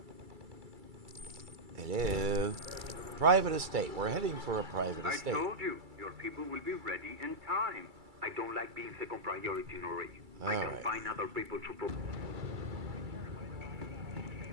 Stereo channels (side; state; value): left; late; 2.3 ms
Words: hello, private estate. We're heading for a private estate. I told you, your people will be ready in time. I don't like being second priority, Nouri. I can find other people to.